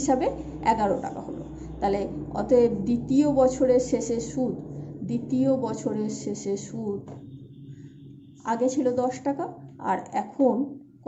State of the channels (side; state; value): both; identical; correlation 1.00